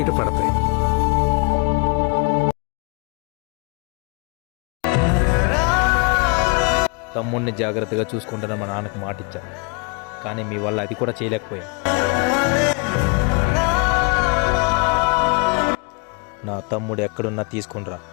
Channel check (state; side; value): quieter; right; 32.2 dB